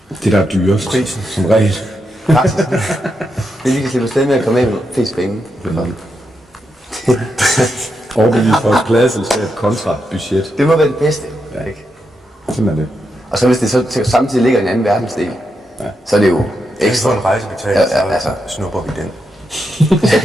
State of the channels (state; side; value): normal; both; correlation 0.84